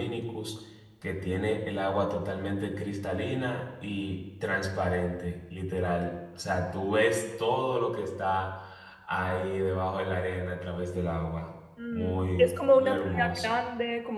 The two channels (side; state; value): both; identical; correlation 1.00